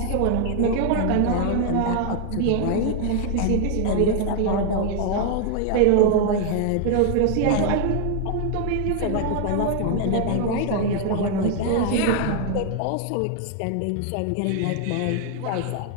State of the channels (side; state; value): both; different; correlation 0.00